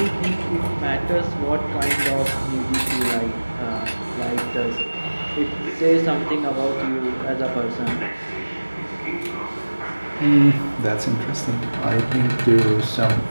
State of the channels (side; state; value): both; inverted; correlation -1.00